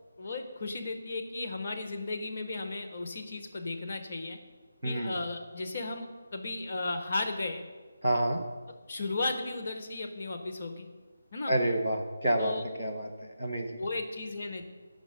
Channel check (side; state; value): both; inverted; correlation -0.85